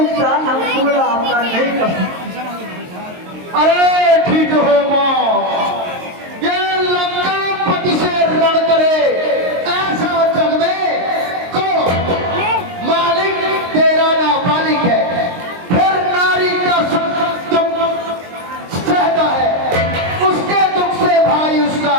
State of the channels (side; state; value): left; late; 22 ms